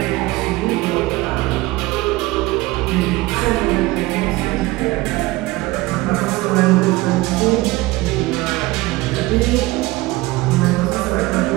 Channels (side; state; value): left; quieter; 20.0 dB